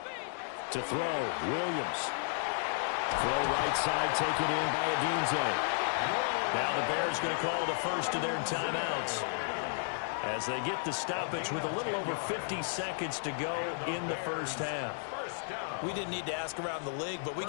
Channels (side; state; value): right; silent; digital silence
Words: To throw, Williams. Throw right side, taken in by Odunze. Now the Bears going to call the first of their timeouts. as they get the stoppage with a little over 50 seconds to go in the first half. We didn't need to ask around the league, but we